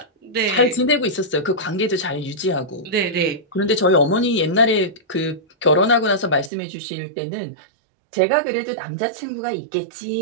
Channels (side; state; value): left; drops out; at 6.5 s